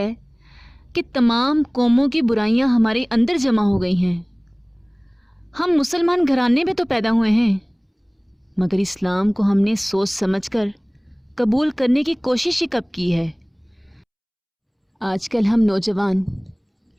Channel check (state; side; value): identical; both; correlation 1.00